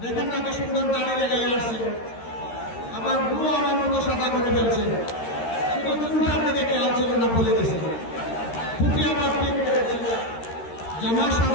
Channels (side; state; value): right; late; 13 ms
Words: দেখেন না কি সুন্দর দাড়ি লেগে আসছে, আবার ভুয়ো আমার মতো সাদা করে ফেলছে। শুধু চুলটার দিকে খেয়াল ছিল না, বলে গেছে। টুপি আবার ঠিক করেছে, জামা